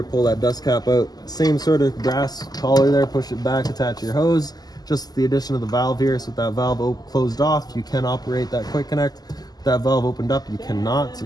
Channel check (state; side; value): late; right; 0.19 ms